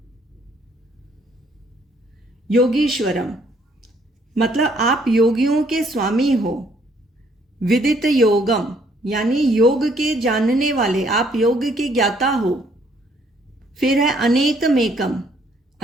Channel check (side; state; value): both; normal; correlation 0.66